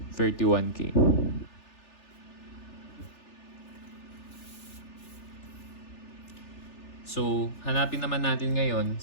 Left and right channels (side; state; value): right; late; 3.4 ms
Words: So, hanapin naman natin ngayon